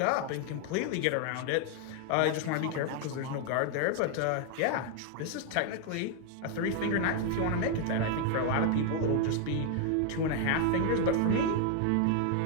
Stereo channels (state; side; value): different; both; correlation 0.00